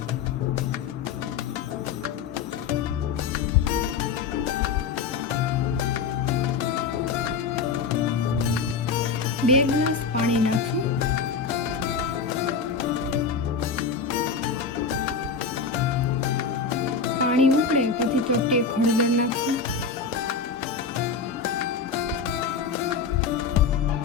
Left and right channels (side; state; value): right; quieter; 5.5 dB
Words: બે ગ્લાસ પાણી નાખશું. પાણી ઉકળે પછી ચોપટી હળદર નાખશું.